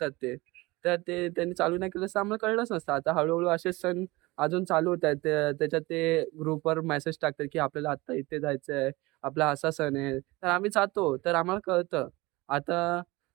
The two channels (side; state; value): left; quieter; 22.0 dB